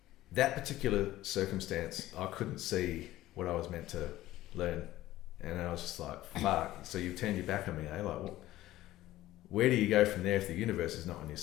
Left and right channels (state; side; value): quieter; right; 15.5 dB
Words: That particular circumstance, I couldn't see what I was meant to learn. And I was just like, fuck. So you've turned your back on me, eh? Like, well, where do you go from there if the universe is not on your